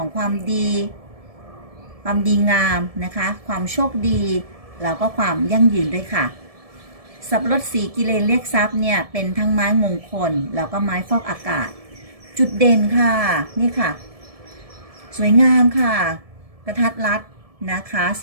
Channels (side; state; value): left; late; 1.7 ms